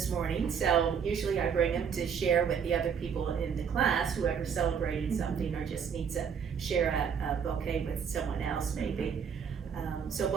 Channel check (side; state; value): left; quieter; 7.1 dB